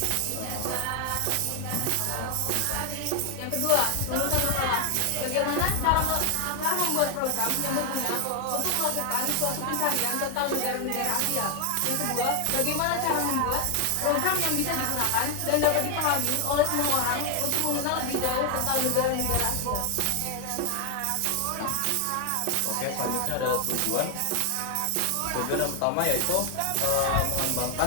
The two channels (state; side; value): different; both; correlation 0.00